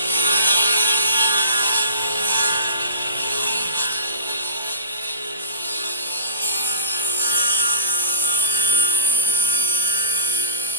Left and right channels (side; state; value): both; inverted; correlation -0.32